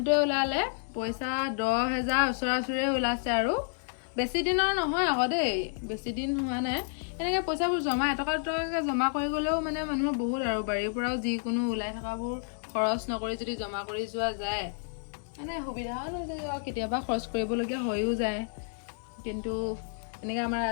ওলালে পইচা 10,000 ওচৰা-ওচৰি ওলাইছে আৰু বেছি দিনৰ নহয় আকৌ দেই বেছি দিন হোৱা নাই এনেকে পইচাবোৰ জমা এটকা দুটকাকে জমা কৰি গলেও মানে মানুহৰ বহুত আৰু বাৰীৰ পৰাও যিকোনো ওলাই থকাবোৰ খৰচ নকৰি যদি জমা কৰি যোৱা যায় মানে সুবিধাও হৈ যায় আৰু কেতিয়াবা খৰচ কৰিবলগীয়া হৈও যায় কিন্তু এনেকে আমাৰ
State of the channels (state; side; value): silent; right; digital silence